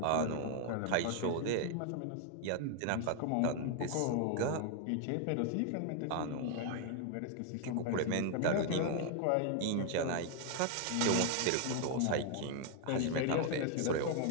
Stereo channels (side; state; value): both; different; correlation 0.00